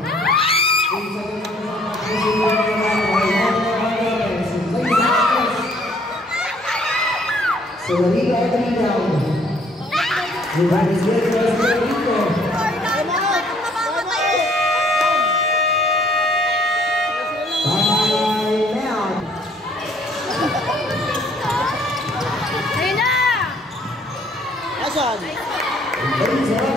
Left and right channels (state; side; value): normal; both; correlation 0.62